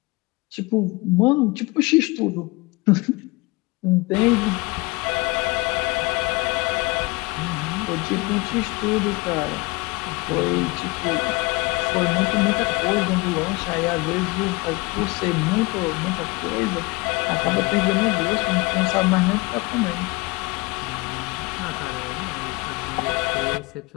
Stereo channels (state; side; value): quieter; right; 24.5 dB